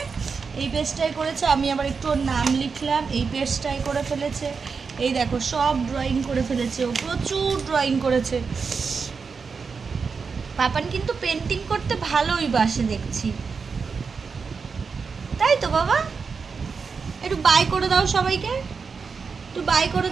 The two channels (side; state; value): left; quieter; 5.3 dB